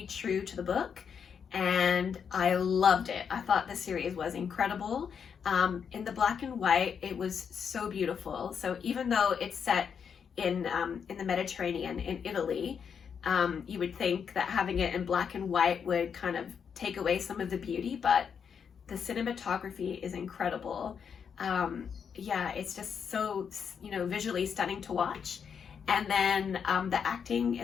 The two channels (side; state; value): right; quieter; 7.0 dB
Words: true to the book, and I loved it. I thought the series was incredible. In the black and white, it was so beautiful. So even though it's set in the Mediterranean, in Italy, you would think that having it in black and white would kind of take away some of the beauty, but the cinematography is incredible. Yeah, it's just so, visually stunning to watch. And then the acting